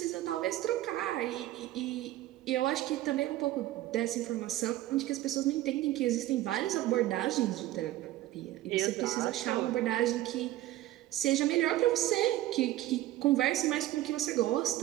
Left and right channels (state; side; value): quieter; left; 15.3 dB